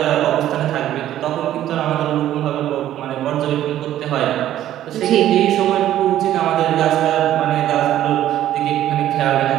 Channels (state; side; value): quieter; left; 12.4 dB